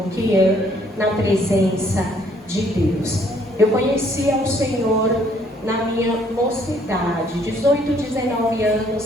que é na presença de Deus. Eu conheci ao Senhor na minha mocidade, 18, 19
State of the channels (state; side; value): normal; both; correlation 0.64